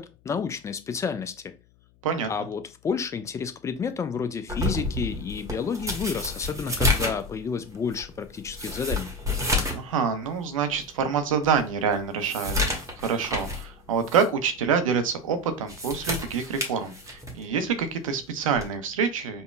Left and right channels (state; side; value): noise; left; hum, 30 dB below the sound